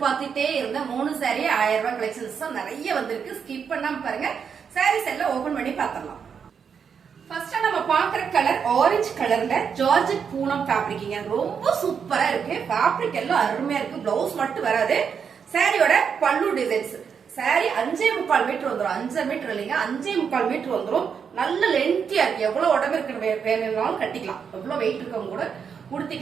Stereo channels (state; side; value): quieter; left; 6.8 dB